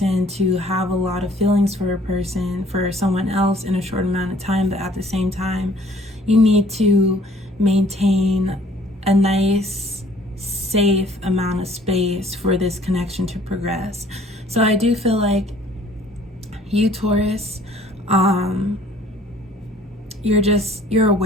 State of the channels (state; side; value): normal; both; correlation 0.56